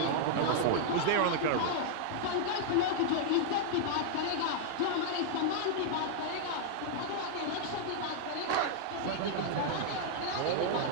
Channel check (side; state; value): both; different; correlation -0.01